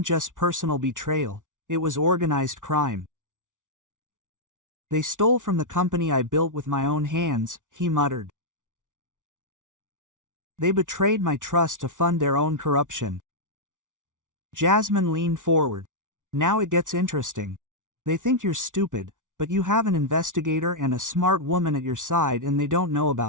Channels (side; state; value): left; late; 0.87 ms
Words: just personal betrayal, it was organized crime. They stole from the company I built with my own hands, he muttered. They betrayed my trust to fund their own corruption. Jasmine leaned forward. Now it gets interesting. They think you're stupid, but you have an investigator and a smart woman at your side and they don't know